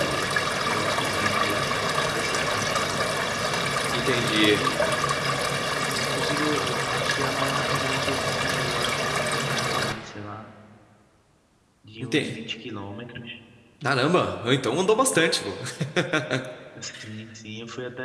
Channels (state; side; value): identical; both; correlation 1.00